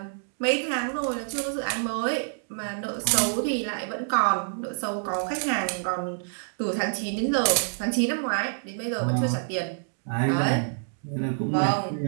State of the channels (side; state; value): left; silent; digital silence